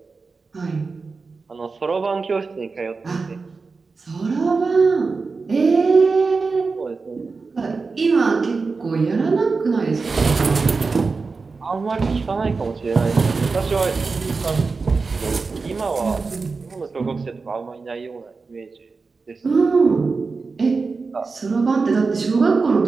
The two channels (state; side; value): quieter; left; 4.4 dB